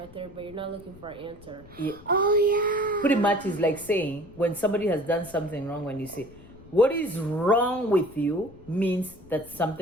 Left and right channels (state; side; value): noise; left; rumble, 21 dB below the sound